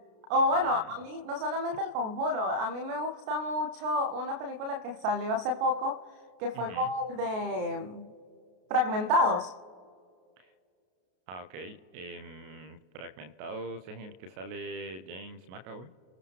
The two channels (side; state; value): left; late; 33 ms